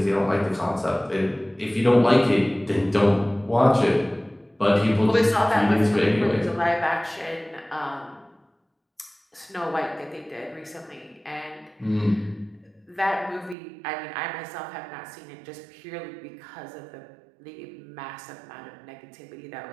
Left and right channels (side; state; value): left; drops out; at 13.6 s